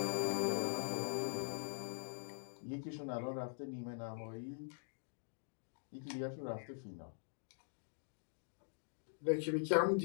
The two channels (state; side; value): silent; right; digital silence